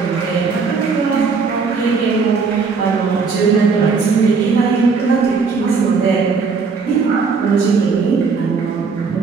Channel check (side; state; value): left; quieter; 5.0 dB